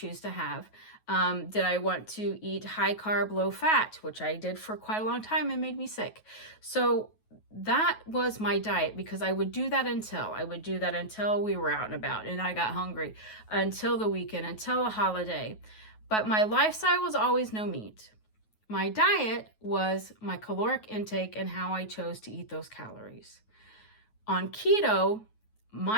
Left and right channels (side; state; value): right; late; 9.3 ms